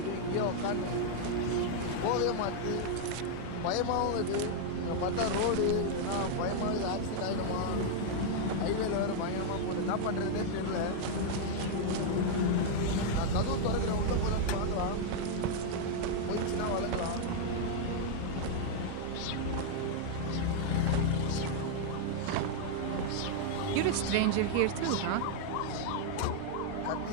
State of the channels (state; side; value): different; both; correlation -0.01